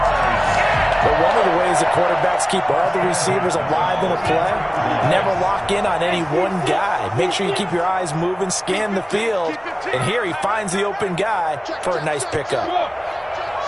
But one of the ways the quarterbacks keep all the receivers alive in a play, never lock in on any one guy. Make sure you keep your eyes moving, scan the field. And here he finds the open guy for a nice pickup.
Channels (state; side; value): identical; both; correlation 1.00